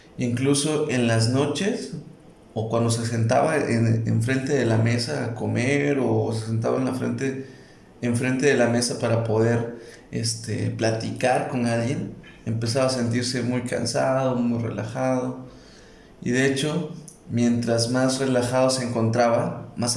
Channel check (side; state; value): both; identical; correlation 1.00